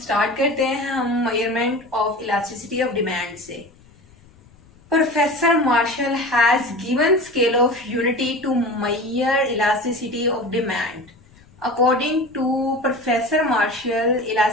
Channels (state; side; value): noise; left; rumble, 27 dB below the sound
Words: करते हैं हम measurement of elasticity of demand से. Professor Marshall has given scale of unity to measure elasticity of demand. According to Professor Marshall,